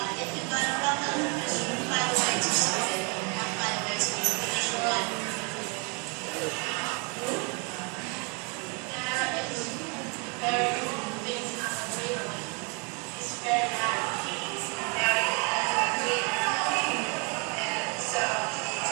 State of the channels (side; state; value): left; quieter; 31.8 dB